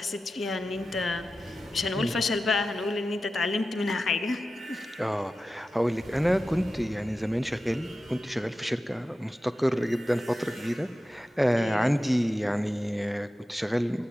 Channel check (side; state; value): both; normal; correlation 0.93